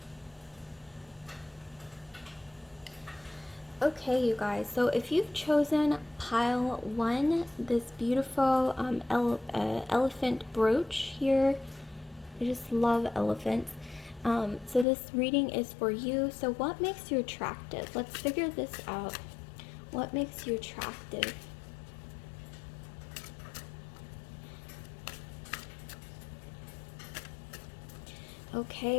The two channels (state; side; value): drops out; right; at 14.9 s